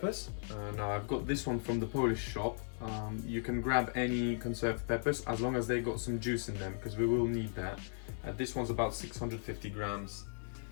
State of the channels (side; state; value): right; silent; digital silence